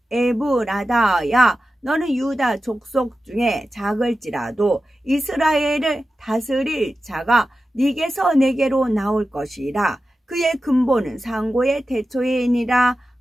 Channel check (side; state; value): both; normal; correlation 0.93